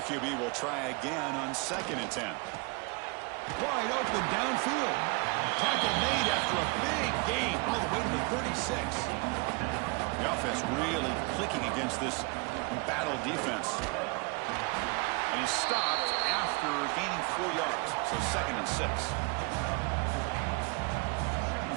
QB will try again on 2nd and 10. Wide open downfield. Tackle made after a big gain all the way to the 36. The offense really clicking against this battle defense. And he's stopped after gaining 4 yards, so 2nd and 6.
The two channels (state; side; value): quieter; left; 29.8 dB